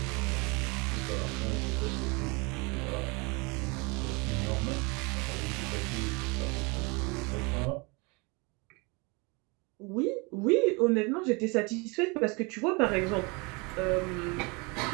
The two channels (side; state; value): left; quieter; 28.7 dB